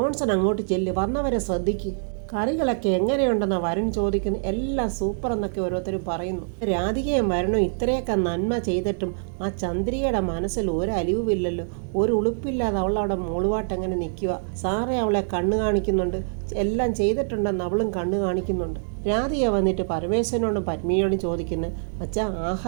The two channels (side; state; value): left; silent; 62 dB below the other